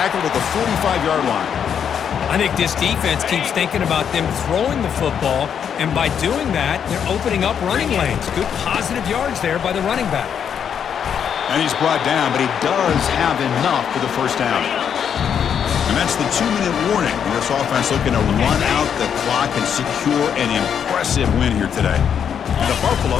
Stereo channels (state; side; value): quieter; right; 8.0 dB